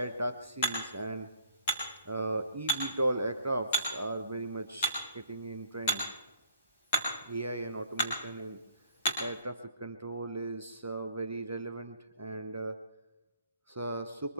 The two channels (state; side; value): inverted; both; correlation -0.57